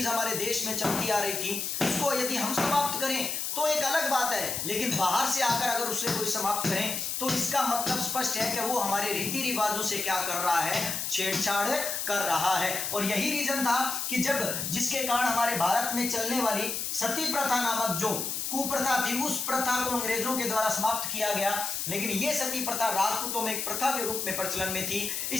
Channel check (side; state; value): left; noise; hiss, 2 dB below the sound